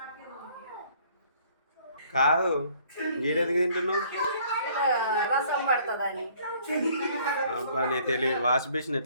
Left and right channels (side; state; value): both; inverted; correlation -0.59